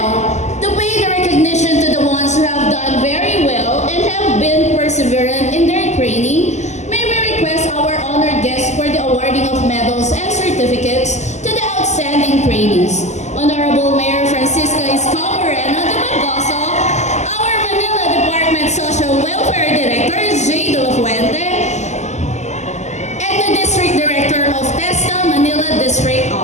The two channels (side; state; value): right; late; 0.33 ms